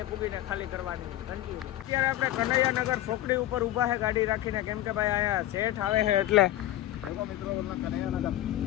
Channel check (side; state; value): right; quieter; 14.3 dB